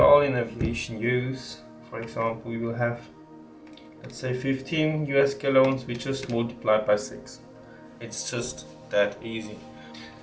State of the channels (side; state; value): both; identical; correlation 1.00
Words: in aviation use, for example, we will have, let's say 15 US gallons, we just multiply by 6. It's just that easy.